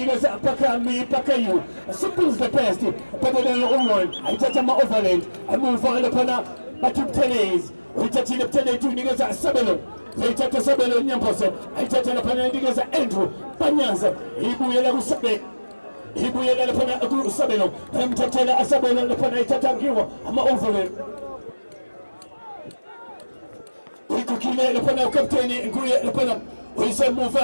pakayu simple is the best better than all one ayithatha ama-overland emuva laphana bathi ubuthelezi uyithathile buthelethi uyinikeza isabelo ayithatha isabelo nyamposo ayithatha laphana uyinikeza Andrew Banyaza ibuyela kusabelo ibuyela laphana kusabelo emthathela asabelo laphana ayithatha ngiwo ama-overland uyikhukhile laphana ukapteni nguye laphana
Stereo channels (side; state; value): both; inverted; correlation -1.00